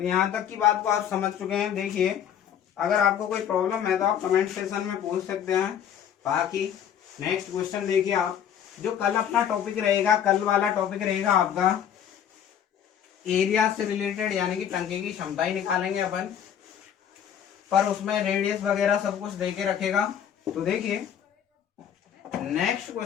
यहाँ तक की बात को आप समझ चुके हैं। देखिए, अगर आपको कोई प्रॉब्लम है तो आप कमेंट सेक्शन में पूछ सकते हैं। बाकी नेक्स्ट क्वेश्चन देखिए आप, जो कल अपना टॉपिक रहेगा, कल वाला टॉपिक रहेगा आपका एरिया से रिलेटेड, यानी कि टंकी की क्षमता ही निकालेंगे अपन, पर उसमें रेडियस वगैरह सब कुछ देके रखेगा। तो देखिए नेक्स्ट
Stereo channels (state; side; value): quieter; right; 9.2 dB